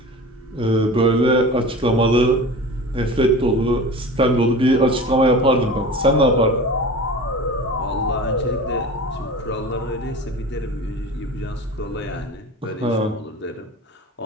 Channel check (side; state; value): both; normal; correlation 0.35